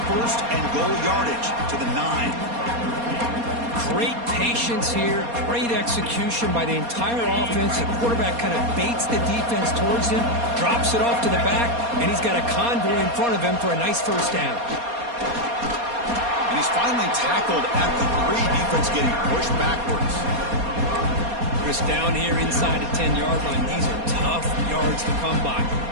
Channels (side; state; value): left; late; 4.2 ms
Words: first and goal yardage to the 9. Great patience here, great execution by the entire offense. The quarterback kind of baits the defense towards him, drops it off to the back, and he's got a convoy in front of him for a nice first down. And he's finally tackled at the 3. Defense getting pushed backwards. Chris, down here inside the 10-yard line, these are tough yards to come by.